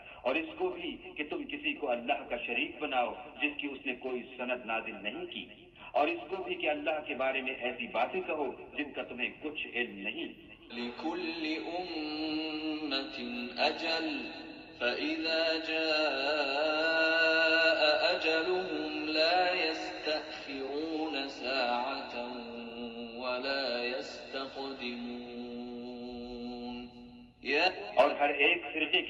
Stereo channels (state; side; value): identical; both; correlation 1.00